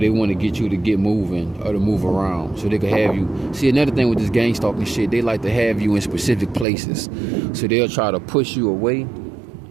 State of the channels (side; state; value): left; drops out; at 6.7 s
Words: they want to get you to get moving or to move around so they can have you. See, another thing with this gang stalking shit, they like to have you in specific places, so they'll try to push you away